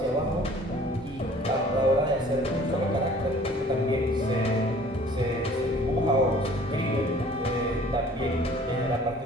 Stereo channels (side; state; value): both; normal; correlation 0.52